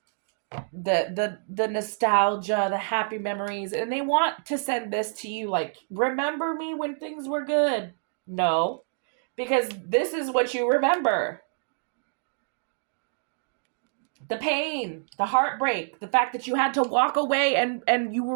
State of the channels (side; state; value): left; silent; digital silence